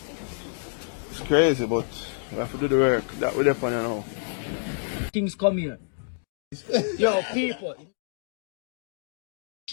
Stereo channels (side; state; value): right; silent; digital silence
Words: It's crazy, but we have to do the work that we're there now. Things come here. Yo, people.